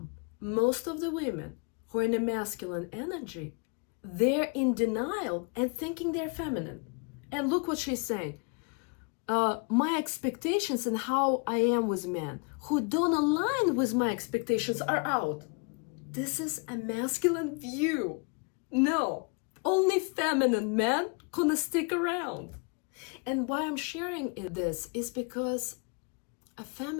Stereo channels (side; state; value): right; quieter; 33.6 dB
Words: Most of the women who are in a masculine energy, they're in denial and thinking they're feminine. And look what she's saying. My expectations and how I am with men who don't align with my expectations are out. This is a masculine view. No, only feminine men gonna stick around. And why I'm sharing this is because a